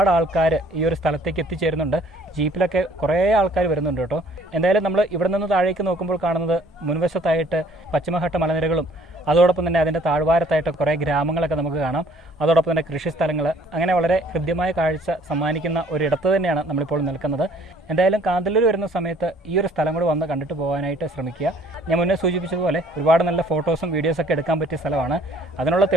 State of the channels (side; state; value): both; normal; correlation 0.58